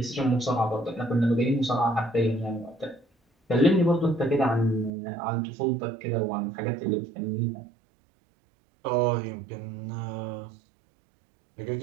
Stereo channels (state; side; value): drops out; left; at 4.9 s